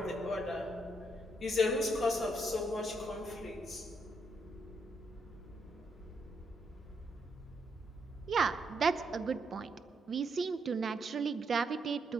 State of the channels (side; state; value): both; normal; correlation 0.77